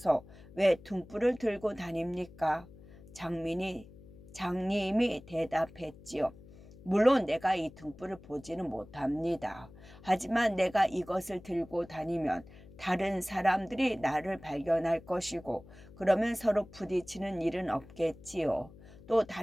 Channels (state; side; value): noise; left; hum, 20 dB below the sound